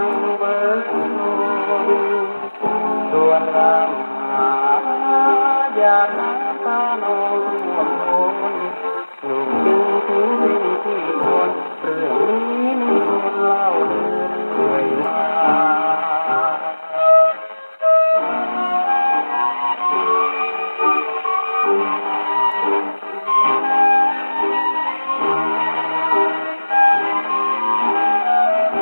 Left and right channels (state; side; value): inverted; both; correlation -1.00